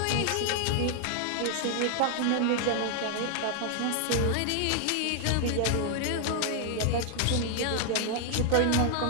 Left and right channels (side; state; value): both; different; correlation 0.00